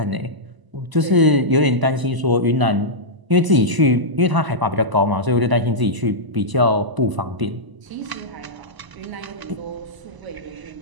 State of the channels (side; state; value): left; late; 1.0 ms